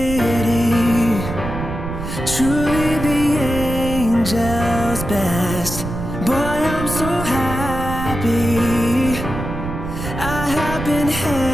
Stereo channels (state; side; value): noise; right; rumble, 6 dB below the sound